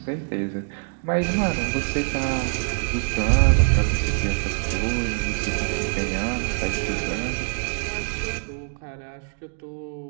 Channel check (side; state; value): left; silent; digital silence